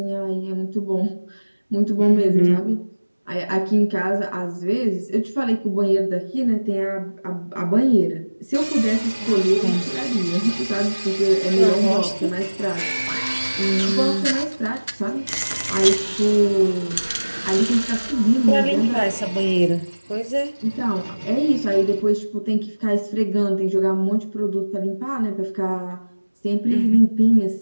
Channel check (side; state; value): both; inverted; correlation -1.00